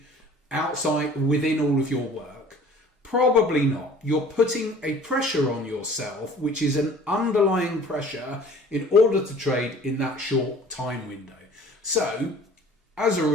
outside within all of your work? Probably not. You're putting a pressure on yourself, which is an underlying pressure in order to trade in that short time window. So as a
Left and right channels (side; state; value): both; normal; correlation 0.48